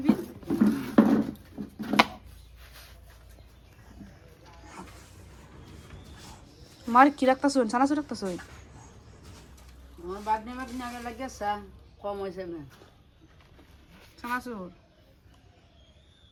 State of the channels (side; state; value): both; identical; correlation 1.00